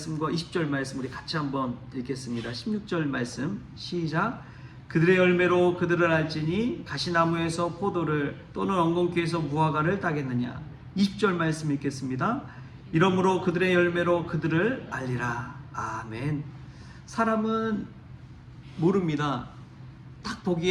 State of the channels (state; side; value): identical; both; correlation 1.00